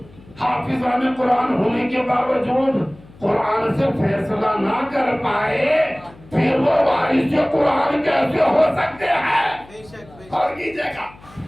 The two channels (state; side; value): noise; left; hum, 23 dB below the sound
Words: हाफिज़ान कुरान होने के बावजूद कुरान से फैसला ना कर पाए फिर वो वारिस कुरान कैसे हो सकते हैं? और कीजिएगा